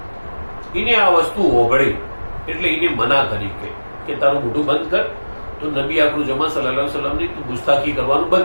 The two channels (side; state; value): both; inverted; correlation -1.00